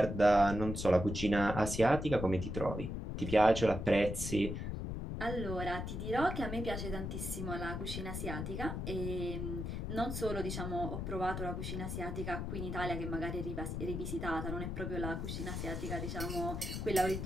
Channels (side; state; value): left; noise; rumble, 4 dB below the sound